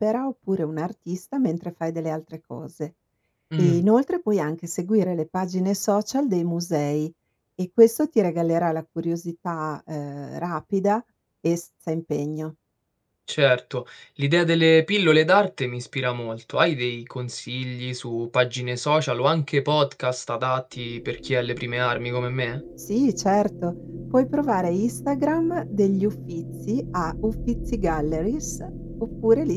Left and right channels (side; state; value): both; identical; correlation 1.00